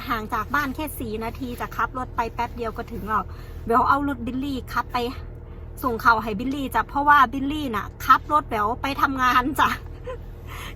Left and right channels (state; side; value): identical; both; correlation 1.00